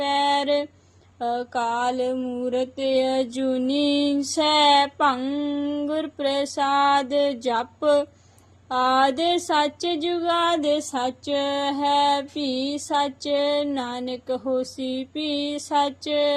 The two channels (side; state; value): both; identical; correlation 1.00